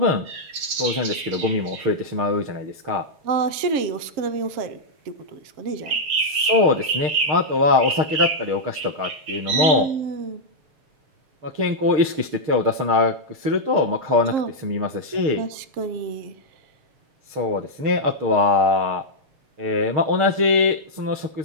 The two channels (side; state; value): left; late; 6.6 ms